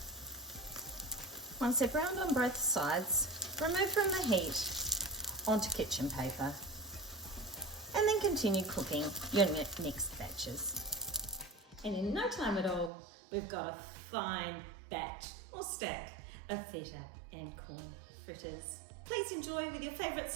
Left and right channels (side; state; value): left; drops out; at 12.9 s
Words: Once they're browned on both sides, remove from the heat onto kitchen paper, and then continue cooking your next batches. And in no time at all, we've got a fine batch or stack of feta and corn fritters. Please enjoy with your favourite